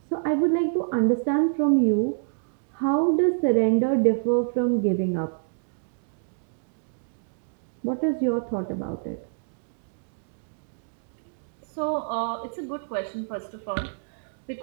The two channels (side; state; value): left; silent; digital silence